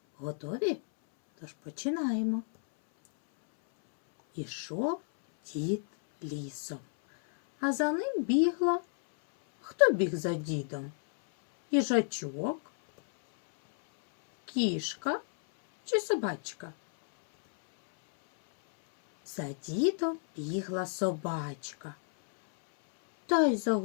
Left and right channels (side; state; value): right; silent; 57 dB below the other